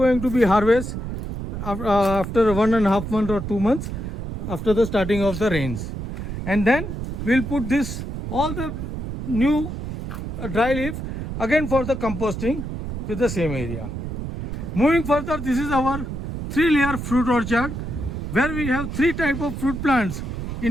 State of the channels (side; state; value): right; noise; rumble, 6 dB below the sound